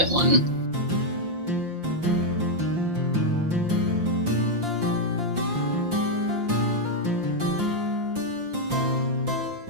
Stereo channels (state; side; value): late; left; 5.7 ms